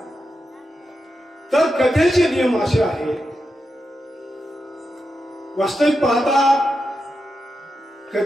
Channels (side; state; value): both; normal; correlation 0.88